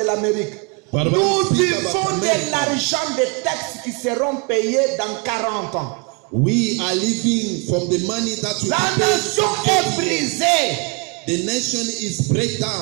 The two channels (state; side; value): quieter; left; 32.1 dB